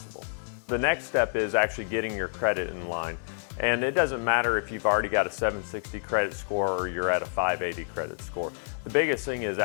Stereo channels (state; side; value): silent; right; 59 dB below the other